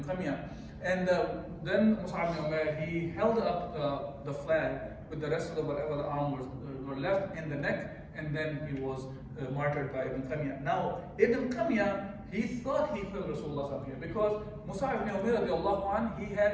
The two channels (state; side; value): identical; both; correlation 1.00